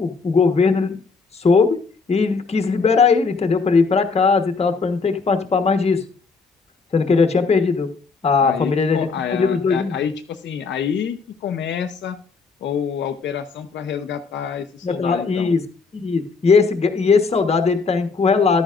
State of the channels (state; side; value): quieter; right; 4.6 dB